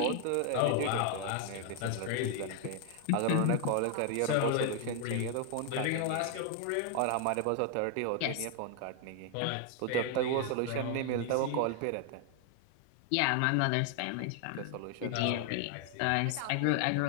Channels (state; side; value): different; both; correlation 0.00